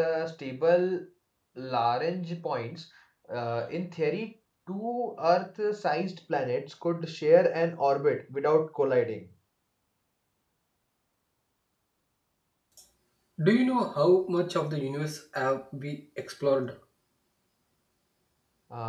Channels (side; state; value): both; identical; correlation 1.00